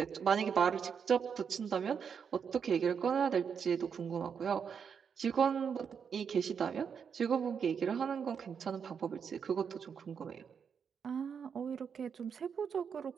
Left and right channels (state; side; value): quieter; left; 6.8 dB